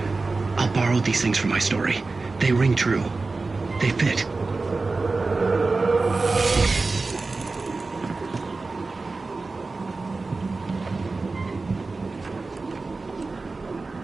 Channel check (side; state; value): left; quieter; 3.7 dB